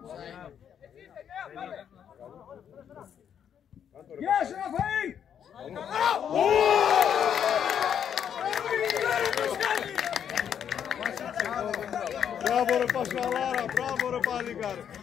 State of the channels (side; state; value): right; quieter; 8.6 dB